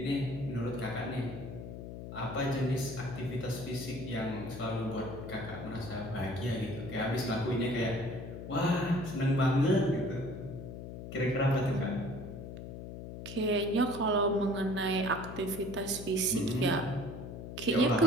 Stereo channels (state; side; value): noise; left; hum, 9 dB below the sound